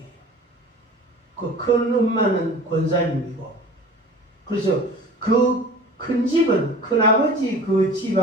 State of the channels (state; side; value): normal; both; correlation 0.41